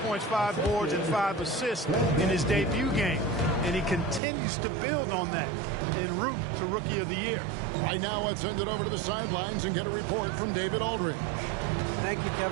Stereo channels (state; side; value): drops out; left; at 4.2 s